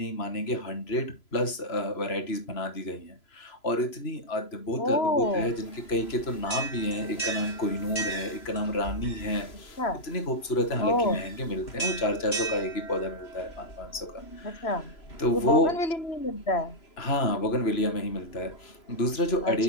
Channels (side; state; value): right; late; 3.0 ms